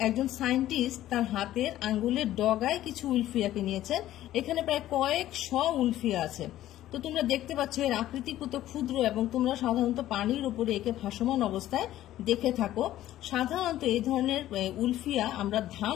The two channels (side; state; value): right; quieter; 13.7 dB